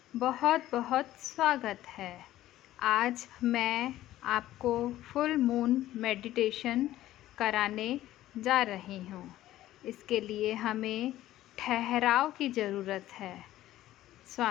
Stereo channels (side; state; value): right; quieter; 14.4 dB